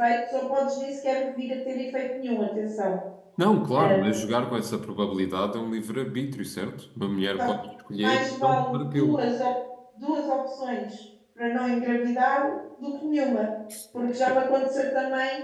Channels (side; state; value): both; identical; correlation 1.00